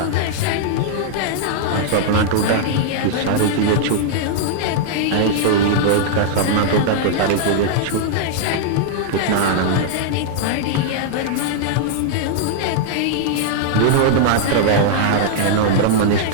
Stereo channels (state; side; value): different; both; correlation -0.01